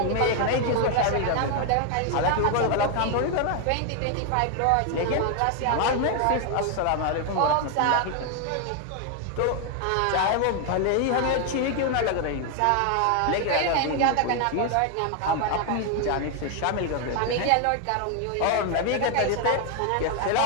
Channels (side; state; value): both; different; correlation 0.00